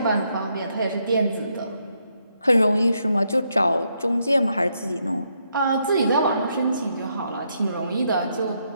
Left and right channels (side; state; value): both; inverted; correlation -0.77